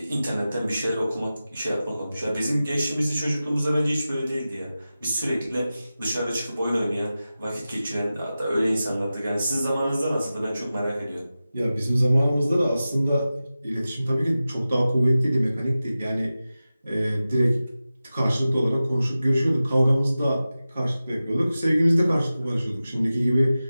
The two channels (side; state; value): both; inverted; correlation -0.94